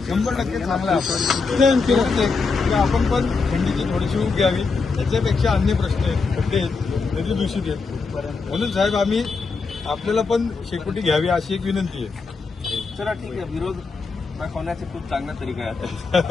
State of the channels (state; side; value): quieter; right; 4.5 dB